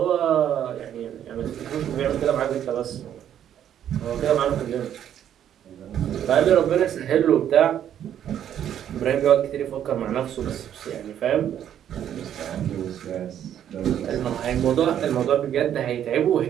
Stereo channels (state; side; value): quieter; left; 10.1 dB